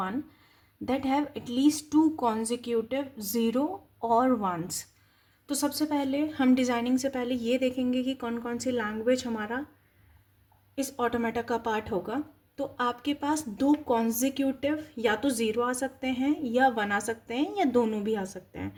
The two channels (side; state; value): both; identical; correlation 1.00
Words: that have at least 2 consecutive 0 और 1s। तो सबसे पहले हम डिज़ाइनिंग से पहले ये देखेंगे कि कौन कौन सी लैंग्वेज हमारा इस ऑटोमेटा का पार्ट होगा। तो आपके पास 2 कॉन्जिक्यूटिव या तो 0 आ सकते हैं या 1 आ सकते हैं या दोनों भी आ सकते हैं।